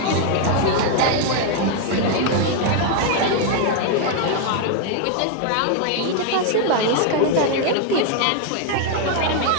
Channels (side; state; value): both; different; correlation 0.00